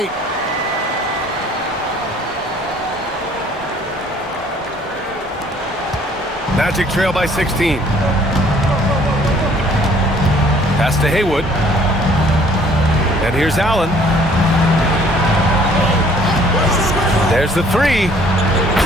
Magic trail by 16. Pass to Haywood. And here's Allen. There's the 3.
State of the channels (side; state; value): both; normal; correlation 0.58